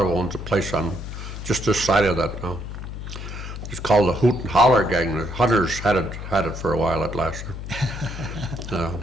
owns a place on just this side of that now. It's called the Hoot and Holler Gang. The Hunters had it for a while at last.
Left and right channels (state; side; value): noise; left; hum, 8 dB below the sound